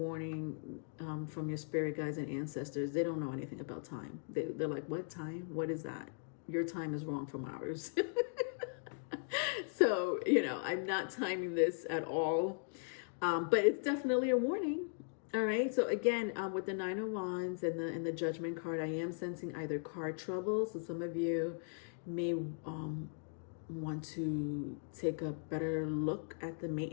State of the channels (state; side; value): silent; right; digital silence